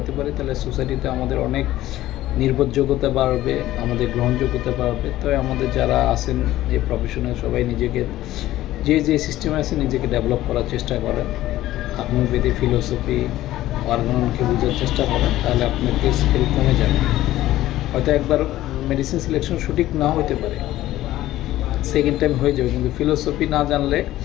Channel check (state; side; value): quieter; right; 14.9 dB